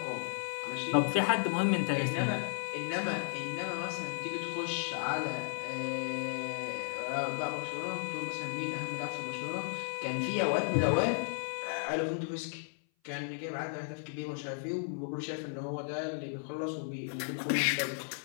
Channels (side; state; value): right; silent; 55 dB below the other